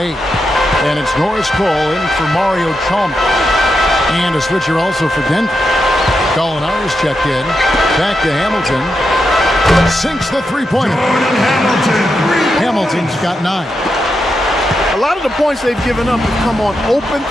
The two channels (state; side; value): normal; both; correlation 0.86